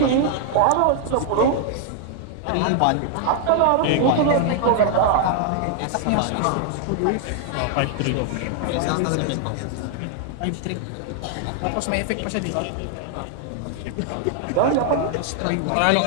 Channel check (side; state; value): both; different; correlation 0.00